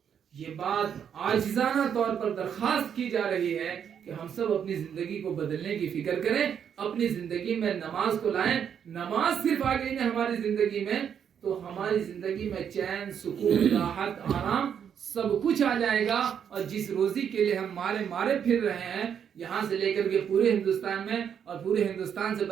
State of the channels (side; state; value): left; quieter; 8.2 dB